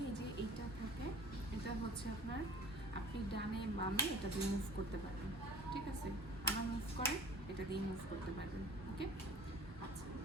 এই যে এইটা থাকে, এটা হচ্ছে আপনার, আপনি ডানে বামে এটা দিয়ে মুভ করতে পারবেন, ঠিক আছে? আমার মুভ করে এটা দিয়ে মুভ করতে পারবেন, ওকে? আচ্ছা,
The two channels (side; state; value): both; normal; correlation 0.47